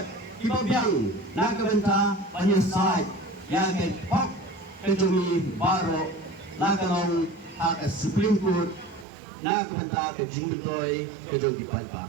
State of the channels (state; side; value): drops out; left; at 9.1 s